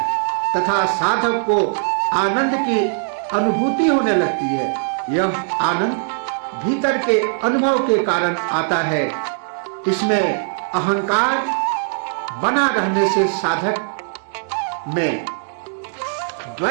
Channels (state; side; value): silent; left; digital silence